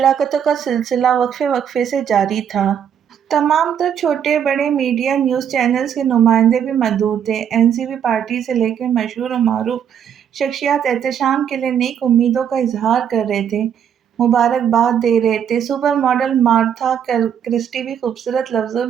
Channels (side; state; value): left; quieter; 8.6 dB